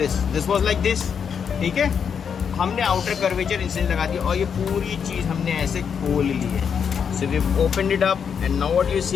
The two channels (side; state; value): right; quieter; 7.1 dB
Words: was like this. ठीक है, हमने आउटर कर्वेचर इंसिजन लगा दिया और ये पूरी चीज हमने ऐसे खोल ली है. So we've opened it up and now what you're